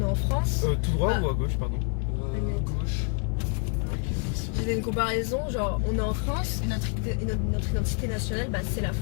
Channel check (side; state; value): right; quieter; 39.6 dB